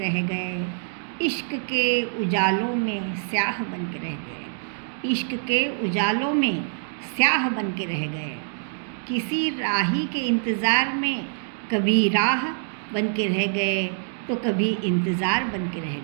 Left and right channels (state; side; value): silent; left; digital silence